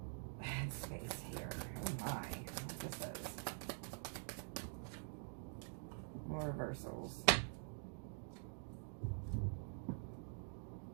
headspace here. Oh my, what this is. More reversals.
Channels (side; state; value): left; silent; digital silence